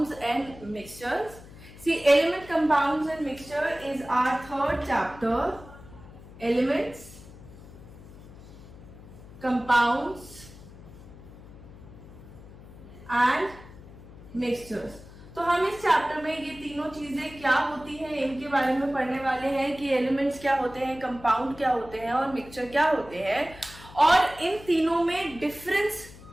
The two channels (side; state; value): left; noise; hum, 18 dB below the sound